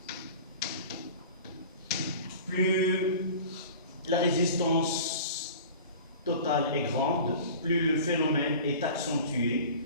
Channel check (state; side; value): inverted; both; correlation -0.40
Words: Plus la résistance totale est grande, plus le phénomène est accentué,